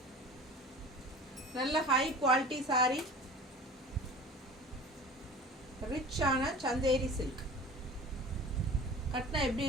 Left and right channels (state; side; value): normal; both; correlation 0.40